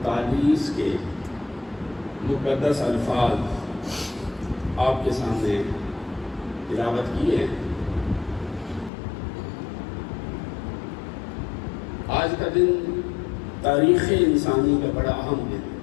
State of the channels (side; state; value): right; drops out; at 8.9 s